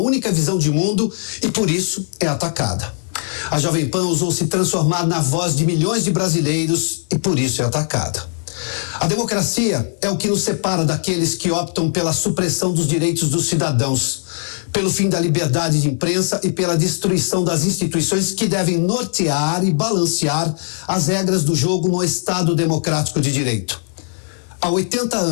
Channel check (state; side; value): silent; right; 57 dB below the other